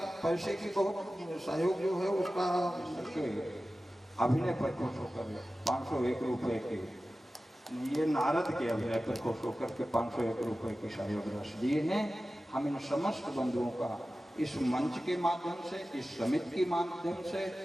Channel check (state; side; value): normal; both; correlation 0.95